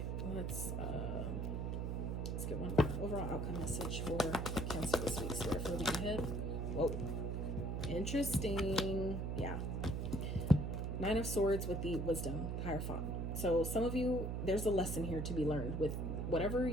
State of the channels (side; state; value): right; noise; hum, 1 dB below the sound